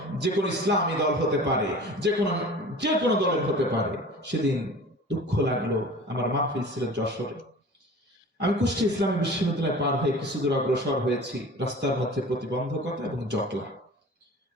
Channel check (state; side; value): normal; both; correlation 0.41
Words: যে কোনো ইসলামী দল হতে পারে, যে কোনো দলের হতে পারে। সেদিন দুঃখ লাগলো, আমার মাহফিল ছিল যশোরে, আমি কুষ্টিয়া ইসলামী বিশ্ববিদ্যালয় পার হয়ে কিছু দূর অগ্রসর হয়েছি। রাস্তার মধ্যে প্রতিবন্ধকতা এবং জটলা,